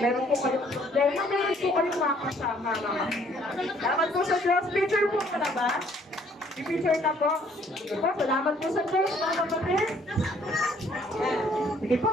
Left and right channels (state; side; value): normal; both; correlation 0.62